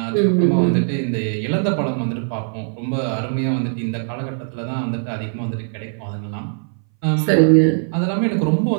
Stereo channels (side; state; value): left; silent; 61 dB below the other